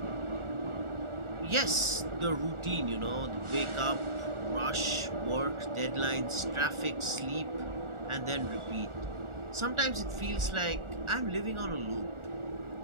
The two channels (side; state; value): left; late; 1.4 ms